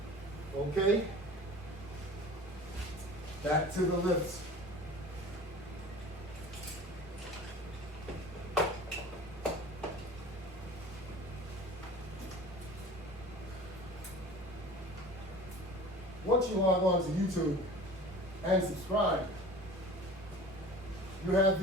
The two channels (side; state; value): both; normal; correlation 0.41